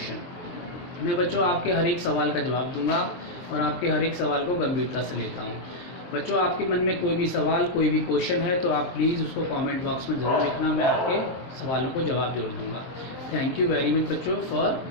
मैं बच्चों आपके हर एक सवाल का जवाब दूंगा और आपके हर एक सवाल को गंभीरता से लेता हूँ। बच्चों आपके मन में कोई भी सवाल, कोई भी क्वेश्चन है तो आप प्लीज़ उसको कमेंट बॉक्स में ज़रूर लिखना, मैं आपके सवालों को जवाब जरूर दूंगा। थैंक यू वेरी मच बच्चों फॉर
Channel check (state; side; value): late; right; 23 ms